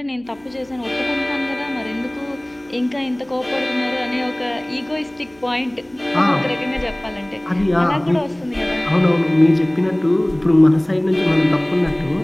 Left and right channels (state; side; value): noise; left; hum, 30 dB below the sound